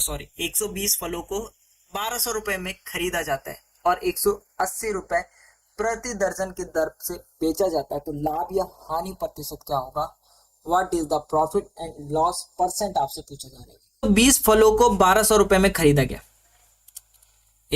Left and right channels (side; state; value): both; identical; correlation 1.00